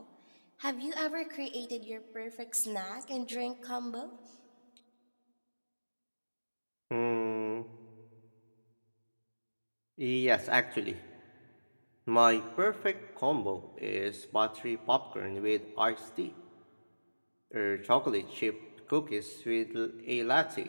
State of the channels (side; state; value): both; inverted; correlation -1.00